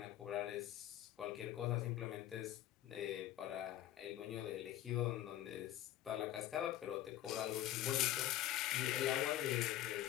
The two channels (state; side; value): quieter; right; 13.2 dB